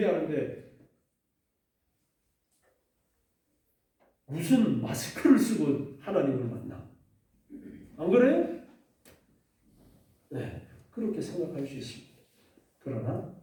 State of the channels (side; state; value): both; identical; correlation 1.00